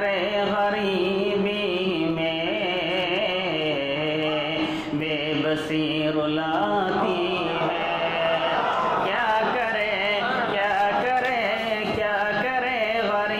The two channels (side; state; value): right; noise; rumble, 21 dB below the sound